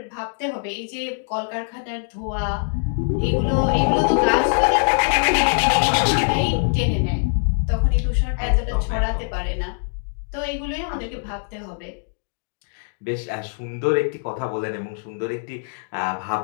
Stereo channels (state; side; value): silent; right; digital silence